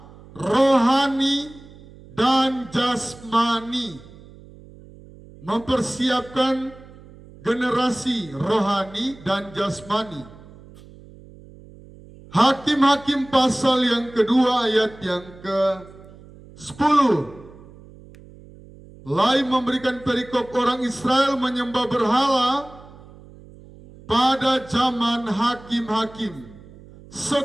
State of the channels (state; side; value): noise; right; hum, 21 dB below the sound